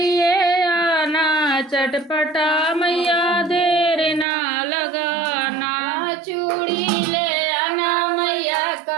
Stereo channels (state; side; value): drops out; left; at 4.2 s